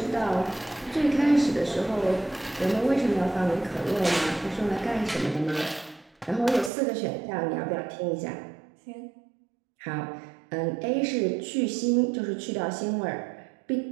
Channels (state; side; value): drops out; left; at 6.7 s